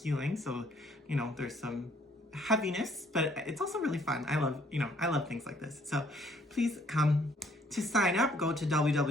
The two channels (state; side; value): normal; both; correlation 0.63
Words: so, there's some heaviness, but it's also really fun. I love things like this. So please come. To sign up, go to